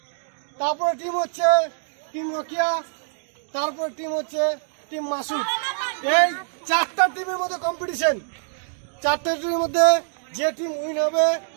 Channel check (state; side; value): silent; left; digital silence